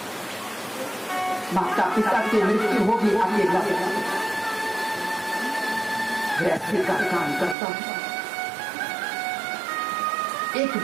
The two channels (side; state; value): left; drops out; at 7.6 s